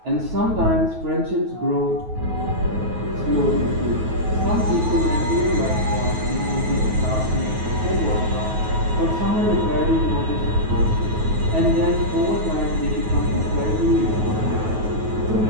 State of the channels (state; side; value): late; left; 9.3 ms